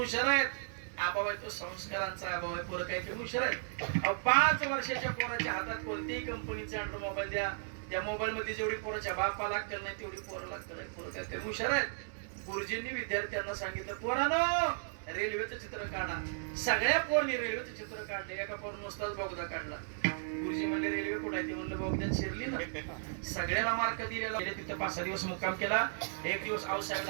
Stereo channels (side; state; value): left; silent; digital silence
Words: आहेत. अभाव आहे तो संस्कारांचा अभाव आहे. पोरं काही कमी हुशार आहेत. 5 वर्षाच्या पोराच्या हातात कोणत्याही कंपनीचा अँड्रॉइड मोबाईल द्या, त्या मोबाईल मध्ये जेवढी पोराच्या बापाला लागतं नाही तेवढी पोरं लागतं. पोरं काय कमी हुशार आहेत. गुरुजींनी विद्यार्थ्यांना सांगितलं, पोरांनो रेल्वेचं चित्र काढा. सगळ्या पोरांनी रेल्वेचं चित्र काढलं. एका पोरानं नुसताच बोगदा काढला. गुरुजी म्हणले रेल्वे कुठे आहे? ते म्हणलं बोगद्यात शिरली ना. सगळ्याला मार्क दिलेला. तिथं 5-6 दिवस मुक्काम केला. एक दिवस आऊसाहेब